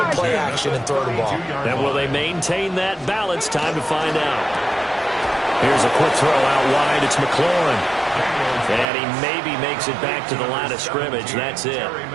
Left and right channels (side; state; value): left; drops out; at 8.8 s